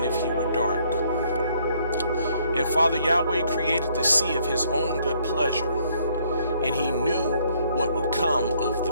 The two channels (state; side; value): inverted; both; correlation -0.66